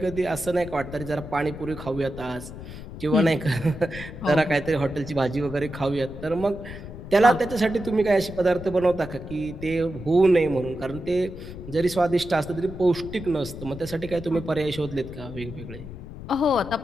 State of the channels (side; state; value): left; noise; rumble, 12 dB below the sound